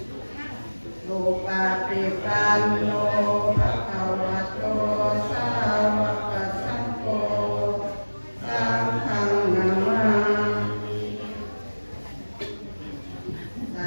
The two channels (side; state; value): both; inverted; correlation -1.00